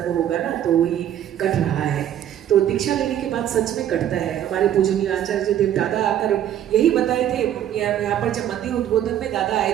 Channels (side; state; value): left; quieter; 10.8 dB